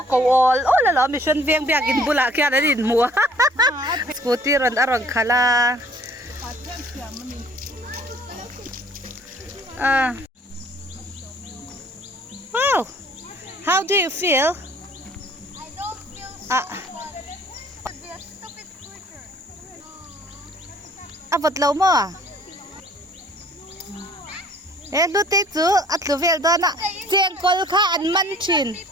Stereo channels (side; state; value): both; normal; correlation 0.55